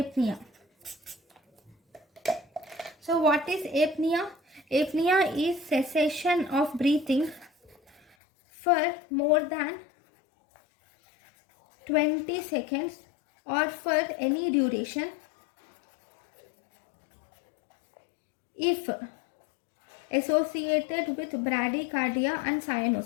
So what is apnea? Apnea is cessation of breathing for more than 20 seconds or for any duration if associated with bradycardia and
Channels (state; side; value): drops out; right; at 8.0 s